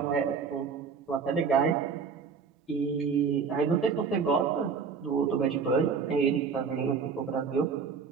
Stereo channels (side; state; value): left; quieter; 5.7 dB